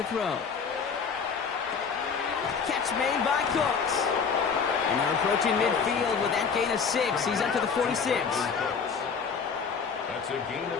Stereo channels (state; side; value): quieter; right; 5.9 dB